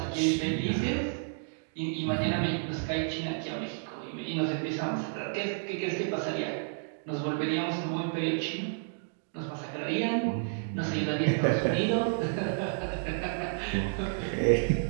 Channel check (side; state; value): left; silent; digital silence